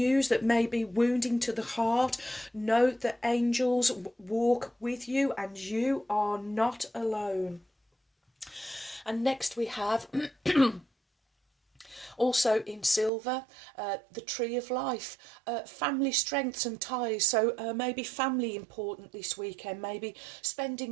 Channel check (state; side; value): drops out; left; at 13.1 s